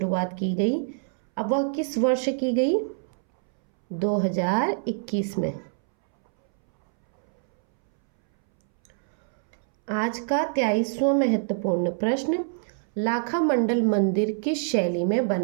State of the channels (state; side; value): silent; left; 62 dB below the other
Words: की गई, अब वह किस वर्ष की गई? 2021 में। आज का 23वां महत्वपूर्ण प्रश्न, लाखा मंडल मंदिर किस शैली में